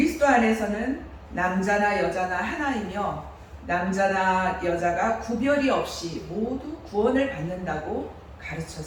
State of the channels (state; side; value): identical; both; correlation 1.00